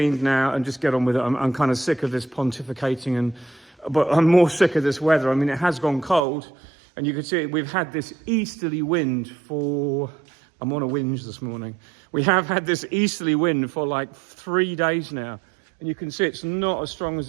now and just get on with it. I'm kind of sick of this pontificating, but I'm more sick of this weather. I mean, it has gone cold, and you can see we've had this easterly wind for, I'm on a whinge this morning. We have had this easterly wind for like 3 days now, and you can see it's not as strong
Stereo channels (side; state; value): left; drops out; at 6.2 s